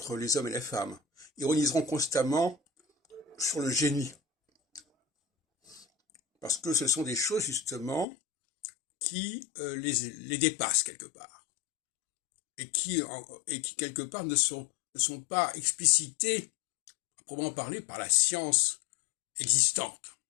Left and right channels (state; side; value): drops out; right; at 8.1 s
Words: les hommes et les femmes, ironiseront constamment sur le génie. Parce que ce sont des choses, justement, qui les dépassent quelque part. Et qui quelque part, ne sont pas explicitées, à proprement parler, par la science existante.